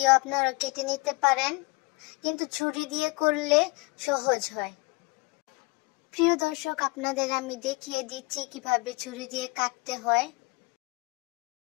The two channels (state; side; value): quieter; right; 27.1 dB